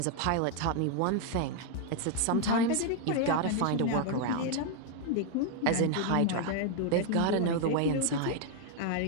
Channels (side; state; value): both; different; correlation 0.00